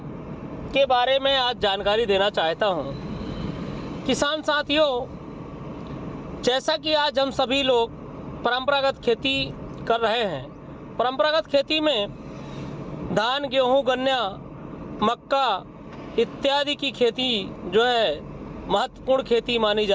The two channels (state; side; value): identical; both; correlation 1.00